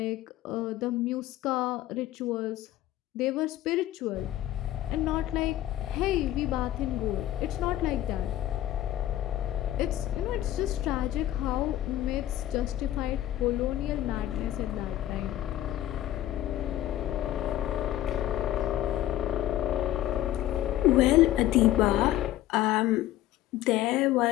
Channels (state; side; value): quieter; right; 13.7 dB